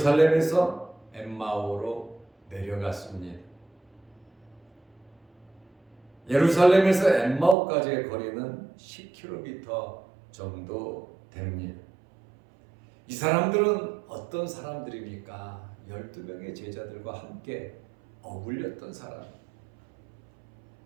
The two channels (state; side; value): drops out; left; at 7.6 s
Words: 엠마오로 내려갔습니다. 예루살렘에서 엠마오까지의 거리는 10km 정도 됩니다. 이 사람들은 어떤 사람들입니까? 12명의 제자들과 함께 어울렸던 사람.